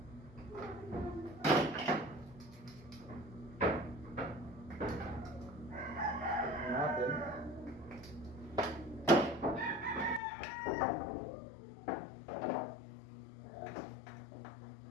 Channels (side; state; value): right; drops out; at 10.2 s